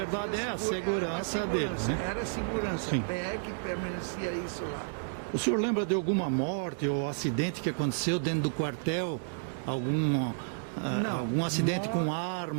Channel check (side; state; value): left; silent; digital silence